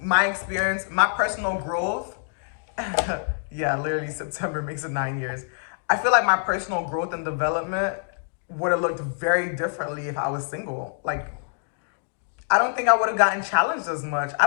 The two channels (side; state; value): right; silent; digital silence